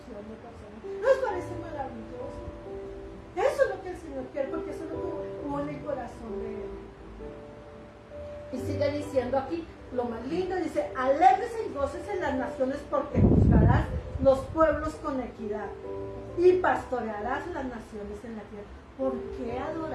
de personas. ¿No os parece maravilloso? Eso es lo que el Señor quiere, porque eso es lo que hubo en el corazón de Él. Y sigue diciendo aquí, lo más lindo, dice, alégrese y gócese en las naciones porque juzgarás los pueblos con equidad y pastorearás las naciones en la tierra. ¿Por qué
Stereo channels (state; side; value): identical; both; correlation 1.00